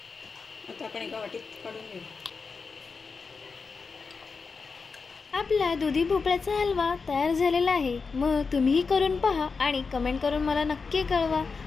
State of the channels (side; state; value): right; quieter; 4.8 dB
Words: आता आपण एका वाटीत काढून घेऊ। आपला दुधी भोपळ्याचा हलवा तयार झालेला आहे। मग तुम्हीही करून पहा आणि कमेंट करून मला नक्की कळवा।